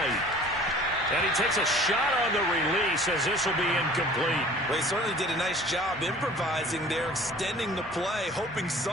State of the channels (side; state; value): both; normal; correlation 0.47